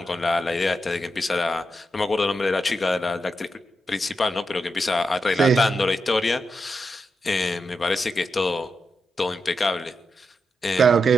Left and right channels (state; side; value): normal; both; correlation 0.86